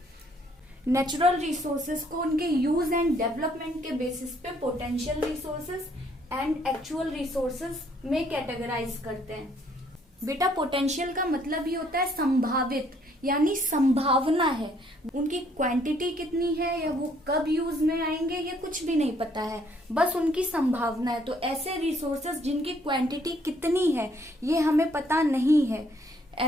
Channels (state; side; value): normal; both; correlation 0.66